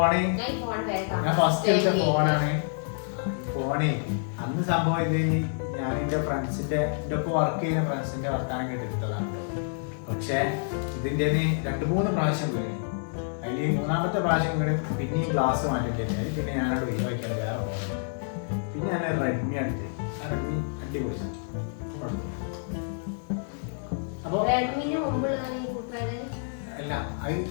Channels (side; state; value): right; silent; digital silence